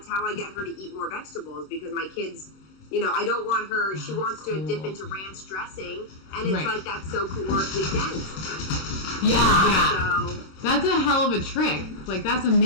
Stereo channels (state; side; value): late; right; 26 ms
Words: how I get her to eat more vegetables, because my kids, you know, I don't want her, she wants to dip into ranch dressing, and it's like, that's so calorically dense. Yeah. So, that's a hell of a trick. Like, that's